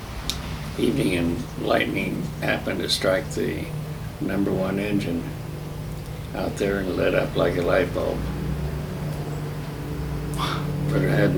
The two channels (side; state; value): both; identical; correlation 1.00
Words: evening, and lightning happened to strike the number 1 engine out there and lit up like a light bulb. But it had